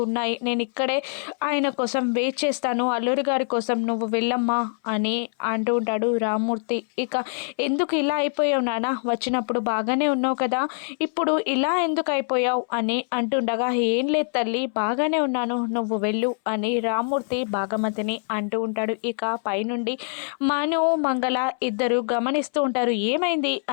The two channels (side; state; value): right; silent; 62 dB below the other